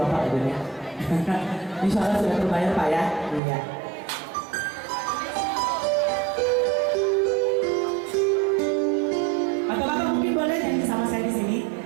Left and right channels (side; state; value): left; drops out; at 3.4 s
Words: Bapak Ibu ya. Insya Allah sudah terbayar Pak ya. Iya. Bapak-bapak mungkin boleh nyanyi sama saya di sini.